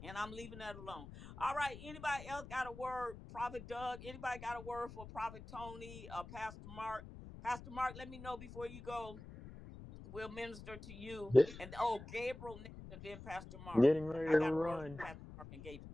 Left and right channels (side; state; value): left; noise; rumble, 13 dB below the sound